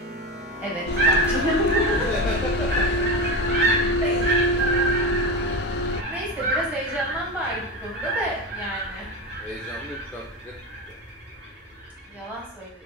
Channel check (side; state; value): both; normal; correlation 0.21